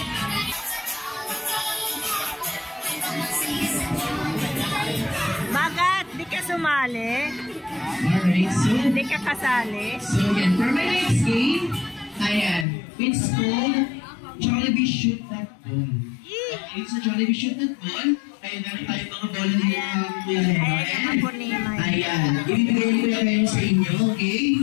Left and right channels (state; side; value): drops out; right; at 12.7 s